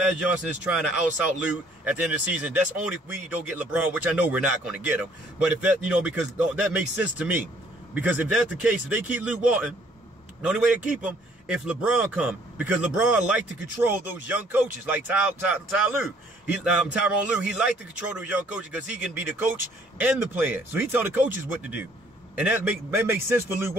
Johnson is trying to out Luke at the end of the season? That's only if we don't get LeBron, which I know we're not going to get him. But if that, you know, because that makes sense to me. Because if that's the case, if they keep Luke Walton, the only way to keep him, if LeBron come, because LeBron like to control those young coaches, like Tyronn Lue. He like to control those young coaches because he can be the coach and the player. So he tell the coaches what to do. And that makes sense for Luke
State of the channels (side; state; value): both; normal; correlation 0.61